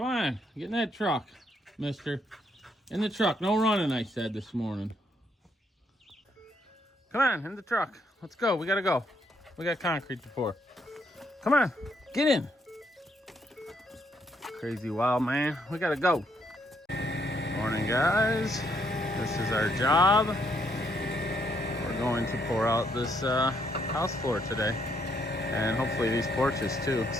on, get in that truck, mister. In the truck. No running, I said this morning. Come on, in the truck. Let's go. We gotta go. We got concrete to pour. Come on, get in. Crazy wild man. We gotta go. Morning, guys. This is our job. We're going to pour out this house floor today. And hopefully these porches too.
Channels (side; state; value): both; normal; correlation 0.73